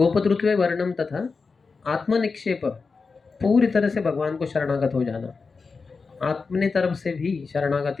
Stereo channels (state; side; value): quieter; right; 4.6 dB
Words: वर्णम तथा आत्मनिक्षेप, पूरी तरह से भगवान को शरणागत हो जाना, अपने तरफ से भी